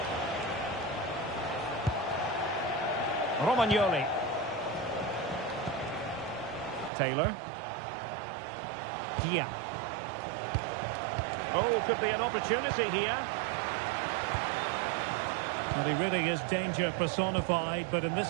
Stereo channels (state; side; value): drops out; left; at 6.9 s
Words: Romagnoli. Taylor. Dia. Oh, could be an opportunity here. Well, he really is danger personified, but in